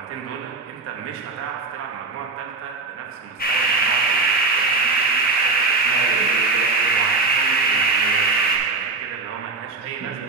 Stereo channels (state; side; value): quieter; left; 3.9 dB